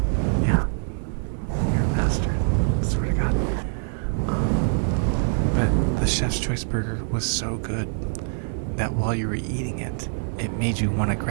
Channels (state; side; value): silent; left; 62 dB below the other